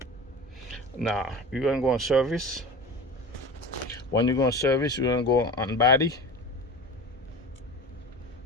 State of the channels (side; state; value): both; normal; correlation 0.33